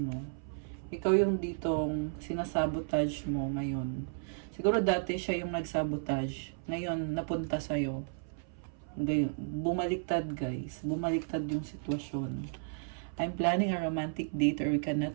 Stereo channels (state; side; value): silent; left; 55 dB below the other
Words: mo. Ikaw yung ditong sinasabotage mo ngayon. Siguro dati siya yung nagsabotage. Ngayon, napunta sa'yo. Bumaliktad, guys. Bumaliktad yung sitwasyon. I'm planning a romantic date or we can